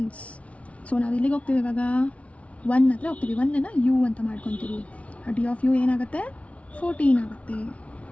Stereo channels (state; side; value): late; right; 0.064 ms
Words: So ನಾವು ಎಲ್ಲಿಗೆ ಹೋಗ್ತೀವಿ ಇವಾಗ? 1 ಹತ್ರ ಹೋಗ್ತೀವಿ. 1ಅನ್ನು ಯು ಅಂತ ಮಾಡ್ಕೊತೀವಿ. D(u) ಏನಾಗುತ್ತೆ? 14 ಆಗುತ್ತೆ.